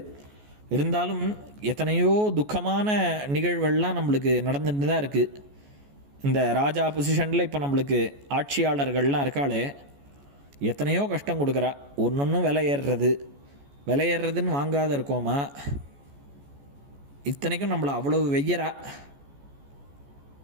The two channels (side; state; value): left; late; 14 ms